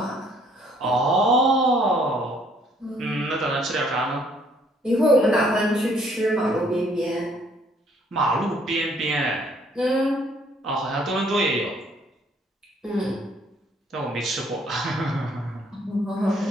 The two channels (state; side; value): normal; both; correlation 0.63